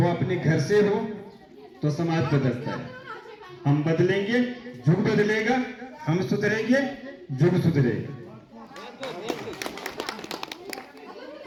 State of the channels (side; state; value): both; identical; correlation 1.00